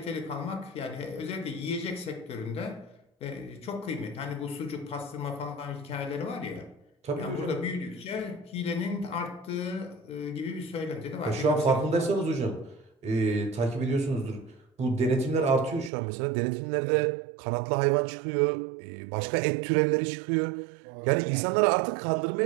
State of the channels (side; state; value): left; drops out; at 15.9 s